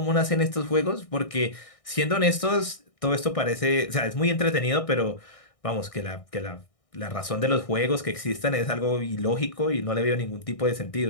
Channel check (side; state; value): right; late; 1.6 ms